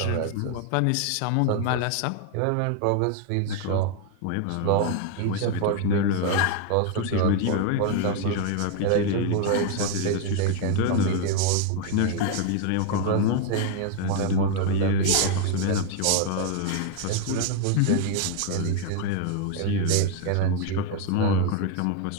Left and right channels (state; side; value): different; both; correlation 0.01